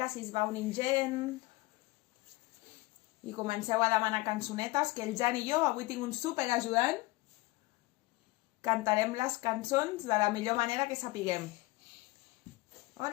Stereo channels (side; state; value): right; quieter; 21.8 dB